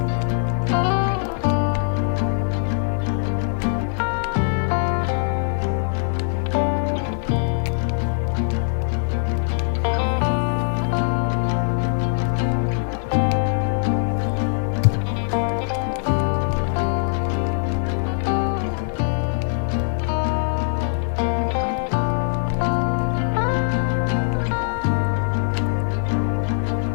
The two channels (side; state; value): right; silent; digital silence